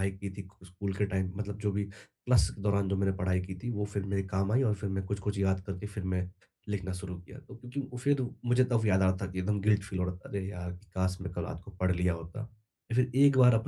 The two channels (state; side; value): identical; both; correlation 1.00